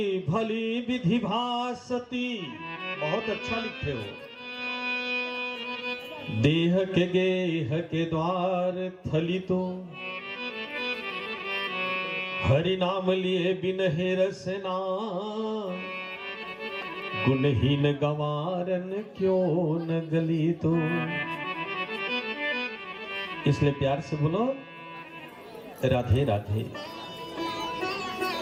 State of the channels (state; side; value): identical; both; correlation 1.00